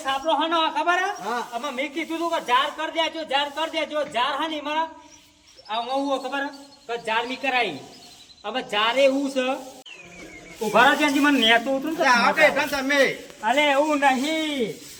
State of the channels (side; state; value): both; identical; correlation 1.00